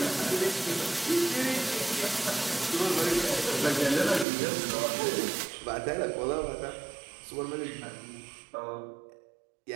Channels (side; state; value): left; drops out; at 4.2 s